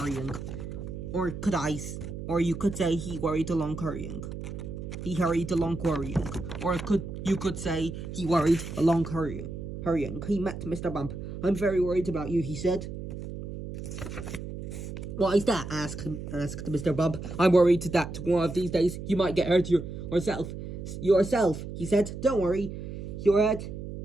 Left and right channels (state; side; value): noise; right; hum, 8 dB below the sound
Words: Or you could say he worried along hurrying. He hurried along worrying. Or you could say he worried along hurrying. He met Mr. Bump. "I'm very worried about you," he said. "Why is that?" asked Mr. Bump. "I'm worried that one of these days you might get hurt yourself," he said. "Don't worry your head